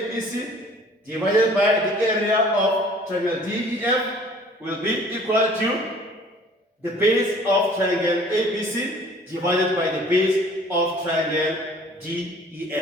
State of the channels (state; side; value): normal; both; correlation 0.52